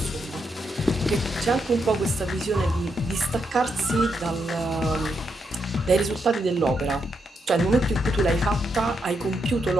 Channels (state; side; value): normal; both; correlation 0.80